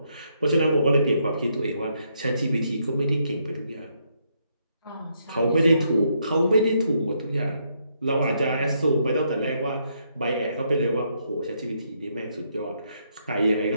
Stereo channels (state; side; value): inverted; both; correlation -0.76